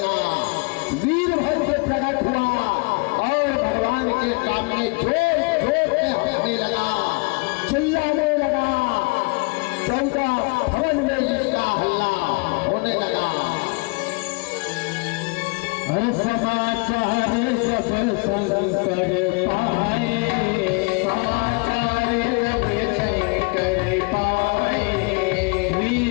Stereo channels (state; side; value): quieter; right; 31.5 dB